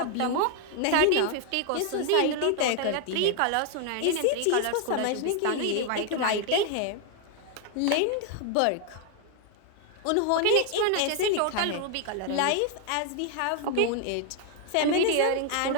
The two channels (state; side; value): different; both; correlation 0.00